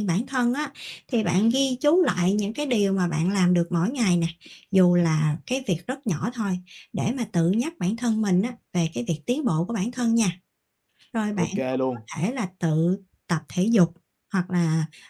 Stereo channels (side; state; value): both; identical; correlation 1.00